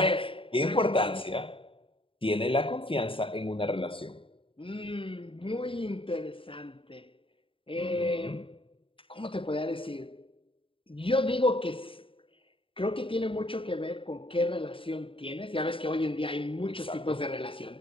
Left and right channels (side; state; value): right; late; 0.26 ms